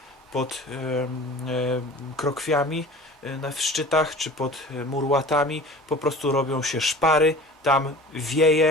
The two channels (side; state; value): both; normal; correlation 0.41